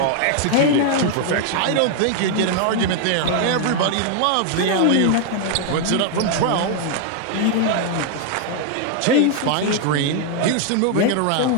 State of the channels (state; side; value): different; both; correlation 0.00